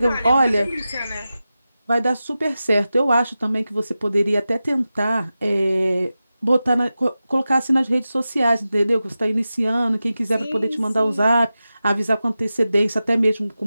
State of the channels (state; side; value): inverted; both; correlation -0.93